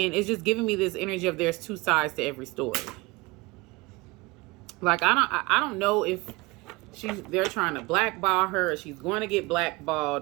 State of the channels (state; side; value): quieter; left; 23.5 dB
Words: it's just giving me this energy of there's 2 sides to every story. Like, I don't know if they're trying to blackball her or she's going to get